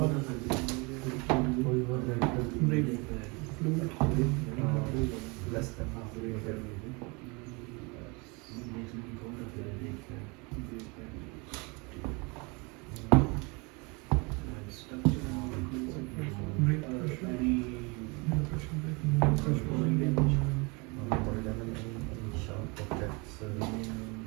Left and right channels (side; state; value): left; quieter; 28.9 dB